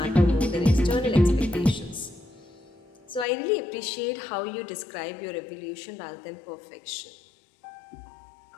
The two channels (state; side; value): drops out; right; at 3.2 s